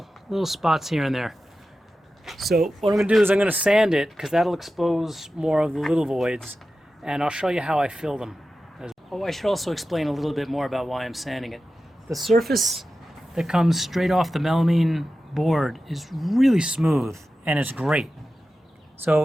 spots here and there. So what I'm going to do is I'm going to sand it because that'll expose more of the little voids, and I'll show you how I fill them. Oh, I should also explain a little bit more about why I'm sanding it. The surface that comes straight off the melamine board is really smooth, and it's great.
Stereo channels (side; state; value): both; normal; correlation 0.93